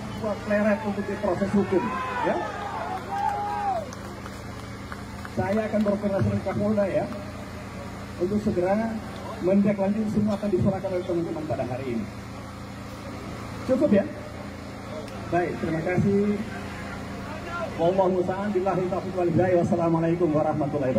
Pleret untuk diproses hukum. Ya, saya akan berkoordinasi dengan Kapolda ya untuk segera menindaklanjuti semua akan diserahkan oleh teman-teman pada hari ini. Cukup ya? Baik, terima kasih. Wallahu ta'ala billahi taufiq wal hidayah. Wassalamualaikum warahmatullahi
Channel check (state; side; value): identical; both; correlation 1.00